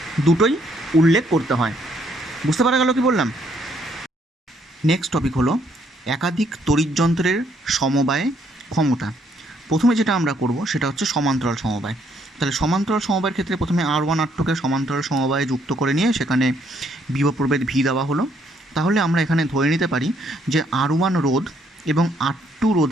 দুটোই উল্লেখ করতে হয়। বুঝতে পারা গেল কি বললাম? নেক্সট টপিক হলো একাধিক তড়িৎ যন্ত্রের সমবায়ে ক্ষমতা। প্রথমে যেটা আমরা করব সেটা হচ্ছে সমান্তরাল সমবায়। তাহলে সমান্তরাল সমবায়ের ক্ষেত্রে প্রথমে R1 R2কে সমান্তরাল সমবায়ে যুক্ত করে নিয়ে সেখানে বিভব প্রভেদ V দেওয়া হলো। তাহলে আমরা এখানে ধরে নিতে পারি যে R1 রোধ এবং R2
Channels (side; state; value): both; normal; correlation 0.69